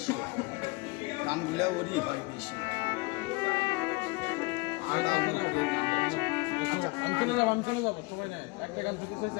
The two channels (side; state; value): right; quieter; 25.5 dB